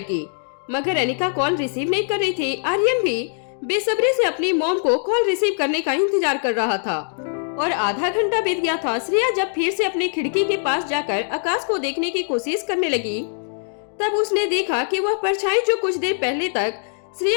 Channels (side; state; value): right; silent; digital silence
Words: की, मगर अनिका कॉल रिसीव नहीं कर रही थी। आर्यन भी बेसब्री से अपनी मॉम को कॉल रिसीव करने का इंतजार कर रहा था और आधा घंटा बीत गया था। श्रेया जब फिर से अपनी खिड़की के पास जाकर आकाश को देखने की कोशिश करने लगी, तब उसने देखा कि वह परछाई जो कुछ देर पहले तक